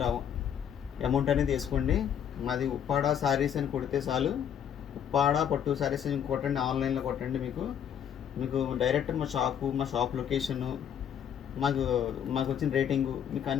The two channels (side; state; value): right; quieter; 8.8 dB